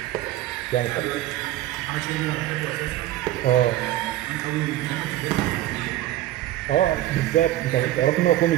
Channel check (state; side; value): quieter; left; 14.3 dB